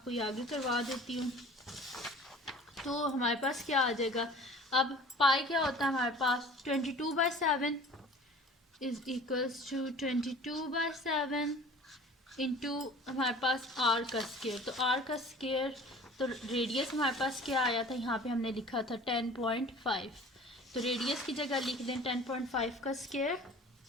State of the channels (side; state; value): both; normal; correlation 0.45